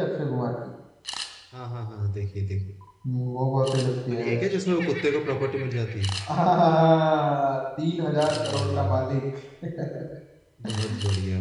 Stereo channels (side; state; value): both; identical; correlation 1.00